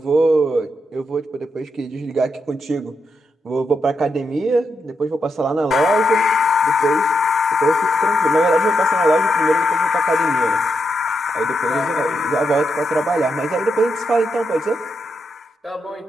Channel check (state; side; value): normal; both; correlation 0.82